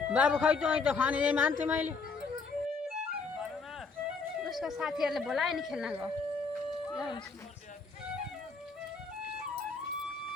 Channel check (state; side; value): quieter; right; 4.6 dB